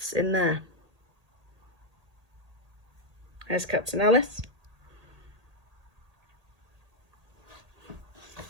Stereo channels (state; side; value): late; left; 1.8 ms